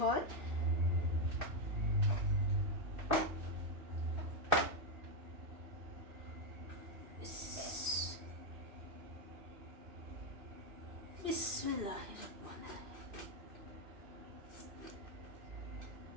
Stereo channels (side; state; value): left; late; 2.6 ms